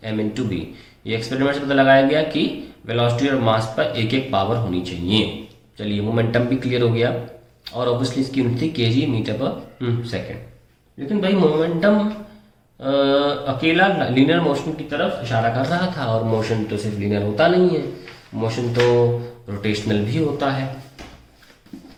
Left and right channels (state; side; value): identical; both; correlation 1.00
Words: m/b। ये एक्सपेरिमेंट से पता लगाया गया कि वेलोसिटी और मास पर एक एक पावर होनी चाहिए। चलिए, मोमेंटम भी क्लियर हो गया, और ऑब्वियसली इसकी यूनिट थी kg मीटर पर सेकेंड। लेकिन भाई मोमेंटम अकेला लीनियर मोशन की तरफ इशारा कर रहा था, और मोशन तो सिर्फ लीनियर होता नहीं है, मोशन तो रोटेशनल भी होता है।